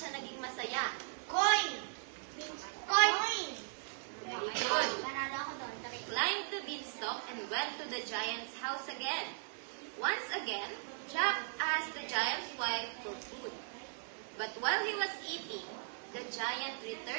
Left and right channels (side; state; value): left; silent; digital silence